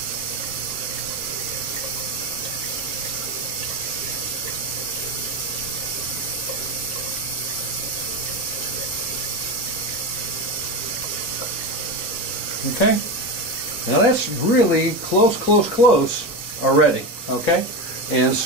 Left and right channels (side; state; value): both; normal; correlation 0.19